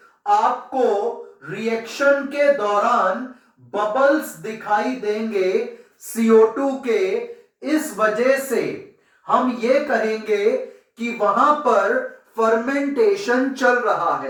आपको रिएक्शन के दौरान बबल्स दिखाई देंगे CO2 के। इस वजह से हम ये कहेंगे कि वहां पर फर्मेंटेशन चल रहा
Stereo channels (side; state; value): both; identical; correlation 1.00